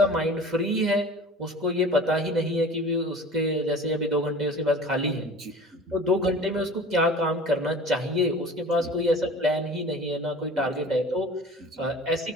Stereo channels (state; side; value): normal; both; correlation 0.41